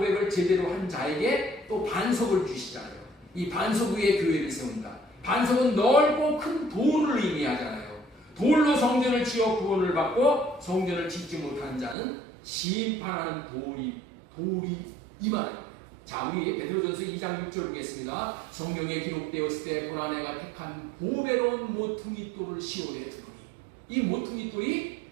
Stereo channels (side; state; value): left; drops out; at 12.0 s